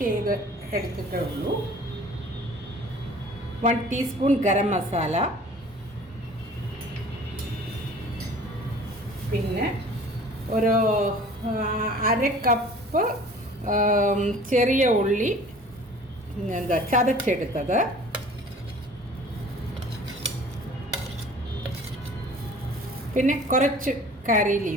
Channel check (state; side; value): normal; both; correlation 0.47